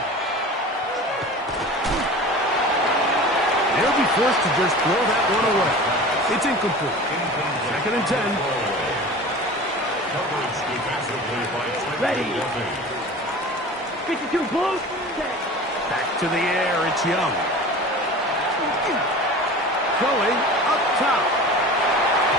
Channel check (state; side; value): normal; both; correlation 0.37